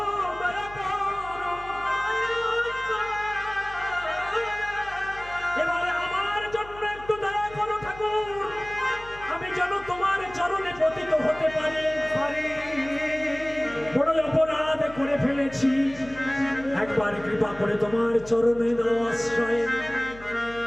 দয়া করো। এবারে আমার জন্য একটু দয়া করো ঠাকুর, আমি যেন তোমার চরণে পতিত হতে পারি। বড় অপরাধ করে ফেলেছি, একবার কৃপা করে তোমার চরণে দাও আশ্রয়।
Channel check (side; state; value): left; noise; hum, 18 dB below the sound